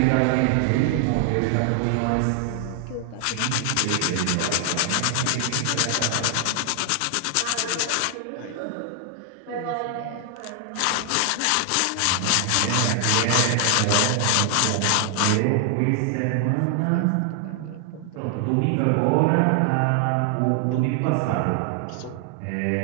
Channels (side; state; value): both; different; correlation 0.00